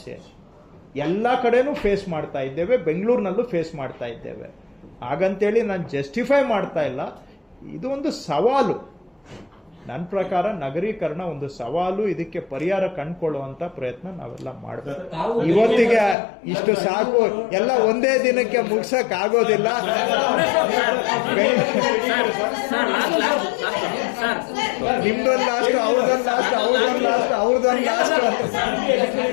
ಎಲ್ಲ ಕಡೆನೂ ಫೇಸ್ ಮಾಡ್ತಾ ಇದ್ದೇವೆ, ಬೆಂಗಳೂರಿನಲ್ಲೂ ಫೇಸ್ ಮಾಡ್ತಾ ಇದ್ದೇವೆ. ಹಾಗಂತೇಳಿ ನಾನು ಜಸ್ಟಿಫೈ ಮಾಡ್ತಾ ಇಲ್ಲ. ಇದು ಒಂದು ಸವಾಲು. ನನ್ನ ಪ್ರಕಾರ ನಗರೀಕರಣ ಒಂದು ಸವಾಲು. ಇದಕ್ಕೆ ಪರಿಹಾರ ಕಂಡುಕೊಳ್ಳುವಂತ ಪ್ರಯತ್ನ ನಾವೆಲ್ಲ ಮಾಡಬೇಕು. ಇವತ್ತಿಗೆ ಇಷ್ಟು ಸಾಕು, ಎಲ್ಲ ಒಂದೇ ದಿನಕ್ಕೆ ಮುಗಿಸಕ್ ಆಗೋದಿಲ್ಲ. ನಿಮ್ದೊಂದು ಲಾಸ್ಟ್, ಅವ್ರದೊಂದು ಲಾಸ್ಟ್, ಅವ್ರದೊಂದು ಲಾಸ್ಟ್, ಅವ್ರದೊಂದು ಲಾಸ್ಟ್.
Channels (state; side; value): drops out; right; at 16.2 s